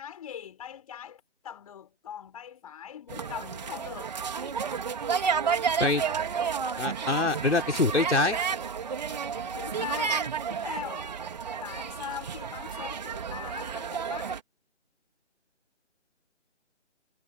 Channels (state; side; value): normal; both; correlation 0.20